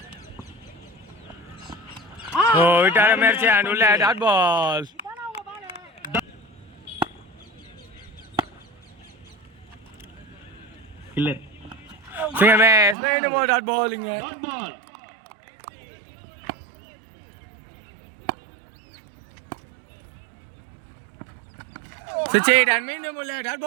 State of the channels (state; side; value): drops out; left; at 13.0 s